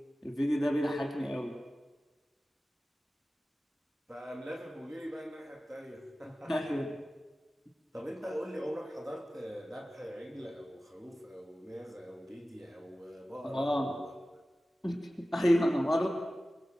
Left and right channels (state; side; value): normal; both; correlation 0.96